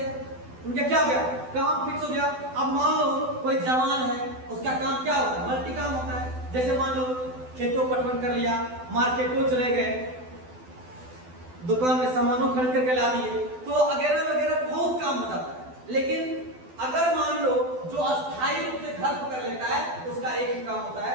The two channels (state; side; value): late; left; 12 ms